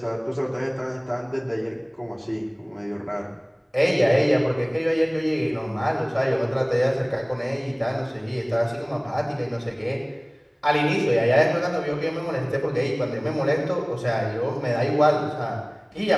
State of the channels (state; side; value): identical; both; correlation 1.00